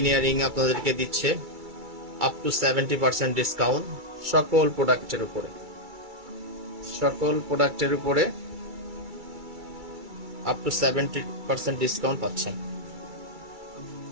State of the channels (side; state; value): left; late; 2.3 ms